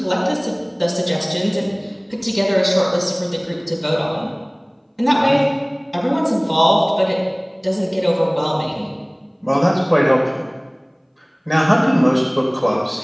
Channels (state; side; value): identical; both; correlation 1.00